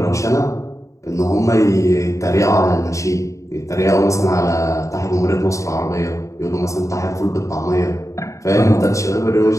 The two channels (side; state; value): right; late; 0.15 ms